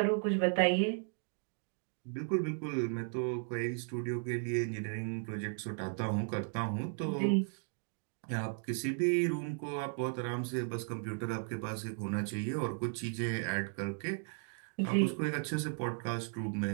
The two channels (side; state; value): left; silent; 54 dB below the other